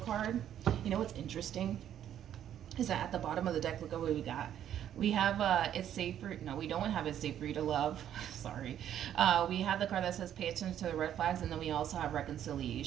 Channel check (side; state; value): left; quieter; 10.4 dB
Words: You know what's interesting is that at the bottom of the deck, look at what we got. We have it's safe for, no, we don't have it's safe for you to love. Sorry. We have the card that says pay attention to the red flags, and then we also have